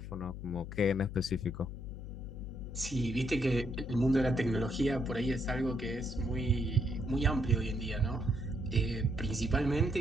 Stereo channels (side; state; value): left; noise; hum, 9 dB below the sound